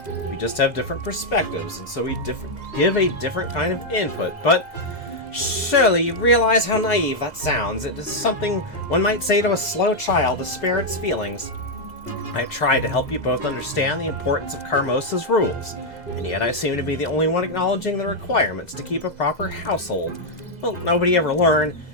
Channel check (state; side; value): late; right; 2.0 ms